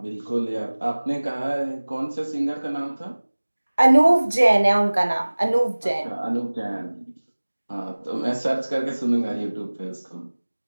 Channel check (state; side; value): inverted; both; correlation -1.00